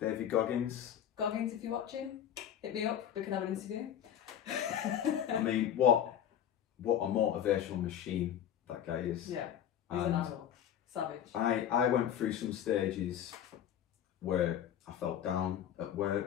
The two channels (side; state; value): right; quieter; 9.9 dB